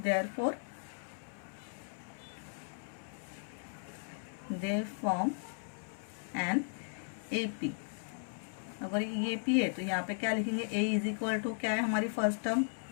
therefore they form an AP. अगर ये एपी है तो यहाँ पे क्या लिखेंगे? ए इज इक्वल टू क्या है हमारी फर्स्ट टर्म?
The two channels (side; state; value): right; silent; 53 dB below the other